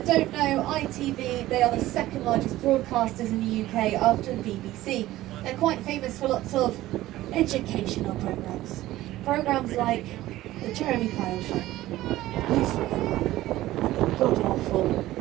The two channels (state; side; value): quieter; left; 15.8 dB